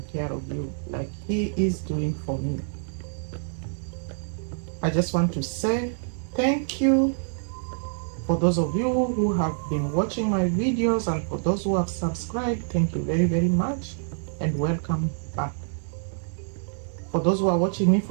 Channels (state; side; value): silent; left; 61 dB below the other